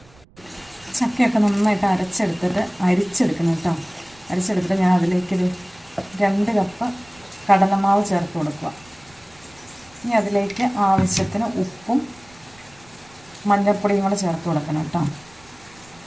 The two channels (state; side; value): noise; right; rumble, 27 dB below the sound